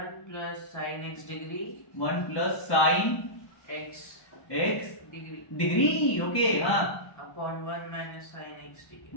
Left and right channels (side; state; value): right; late; 1.1 ms